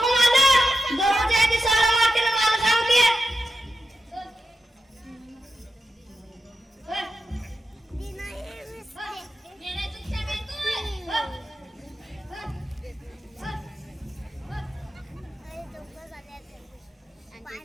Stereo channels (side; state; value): both; normal; correlation 0.90